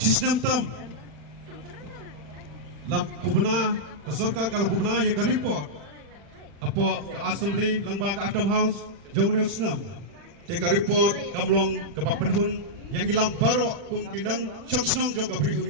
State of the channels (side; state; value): left; late; 40 ms